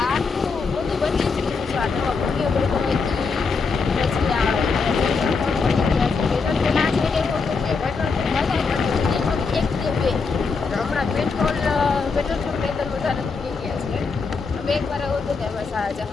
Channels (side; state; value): right; quieter; 4.8 dB